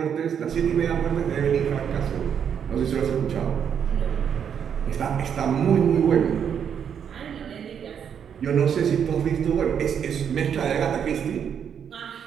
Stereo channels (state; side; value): quieter; left; 8.0 dB